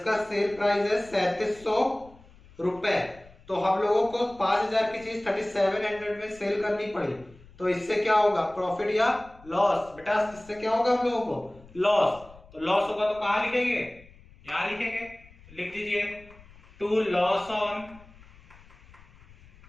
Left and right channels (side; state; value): left; noise; rumble, 24 dB below the sound